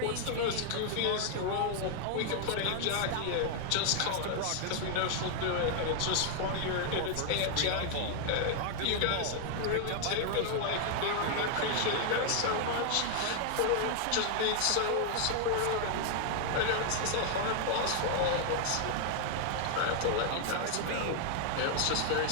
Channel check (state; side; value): different; both; correlation 0.00